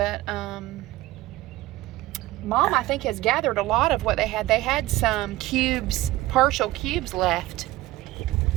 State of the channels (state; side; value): quieter; left; 17.3 dB